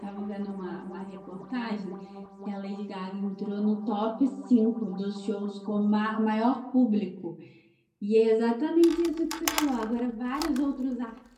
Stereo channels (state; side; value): identical; both; correlation 1.00